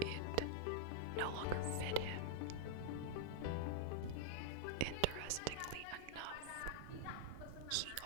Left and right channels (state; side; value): different; both; correlation -0.01